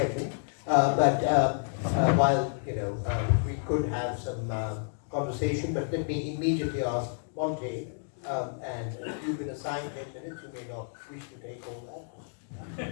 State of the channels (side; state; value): right; silent; digital silence